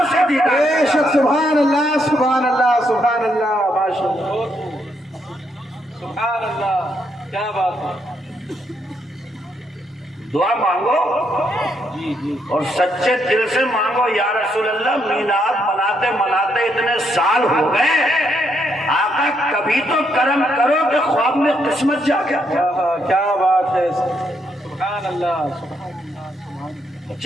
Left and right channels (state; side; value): normal; both; correlation 0.76